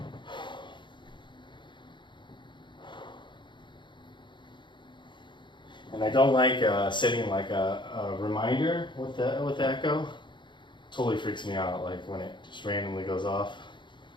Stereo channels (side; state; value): right; late; 0.23 ms